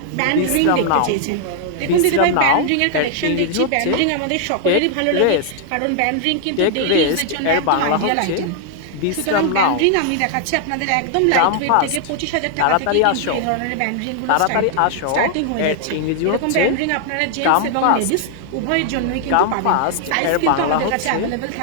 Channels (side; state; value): both; different; correlation 0.00